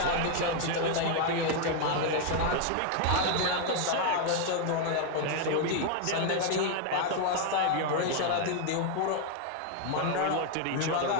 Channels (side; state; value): both; different; correlation 0.00